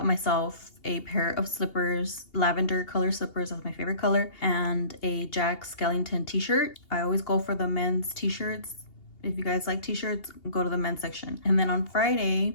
myself a pair of slippers, lavender color slippers, that's my favorite color, and a Jack Skellington t-shirt. I always go for the men's t-shirts. If you guys like t-shirts, go to the men's section. And then on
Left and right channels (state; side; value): late; right; 2.8 ms